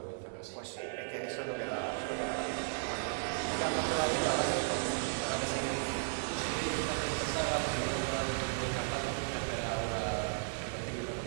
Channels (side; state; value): left; silent; digital silence